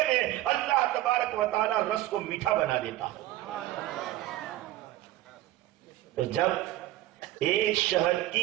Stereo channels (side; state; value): left; quieter; 15.4 dB